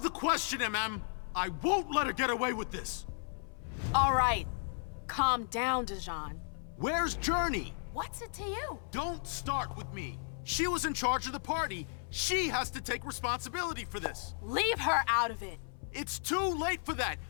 the question, MM. I won't let her get away with this. All right. Calm down, Dejan. Where's Journey? What's it to you? Don't start with me. She was in charge of the party. She has to take responsibility for this. Leave her out of it. It's too late for that.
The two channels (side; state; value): right; silent; 55 dB below the other